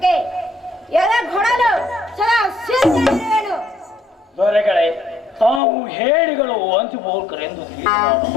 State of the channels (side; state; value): right; drops out; at 5.6 s